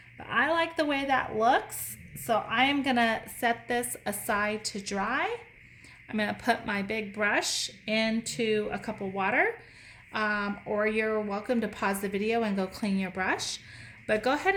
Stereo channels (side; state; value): both; identical; correlation 1.00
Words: But I like the way that looks, so I am gonna set this aside to dry. I'm gonna put my big brush into a cup of water, or you're welcome to pause the video and go clean your brush. But go ahead